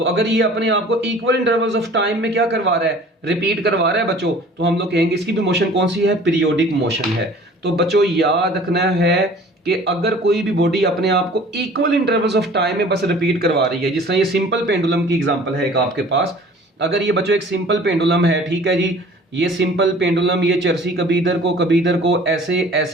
अगर ये अपने आप को इक्वल इंटरवल्स ऑफ टाइम में क्या करवा रहा है? रिपीट करवा रहा है बच्चों, तो हम लोग कहेंगे इसकी भी मोशन कौन सी है? पीरियोडिक मोशन है। तो बच्चों याद रखना है कि अगर कोई भी बॉडी अपने आप को इक्वल इंटरवल्स ऑफ टाइम में बस रिपीट करवा रही है, जिस तरह ये सिंपल पेंडुलम की एग्जांपल है एक आपके पास, अगर ये बच्चों एक सिंपल पेंडुलम है, ठीक है जी, ये सिंपल पेंडुलम ये चरसी कभी इधर को ऐसे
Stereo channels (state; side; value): normal; both; correlation 0.48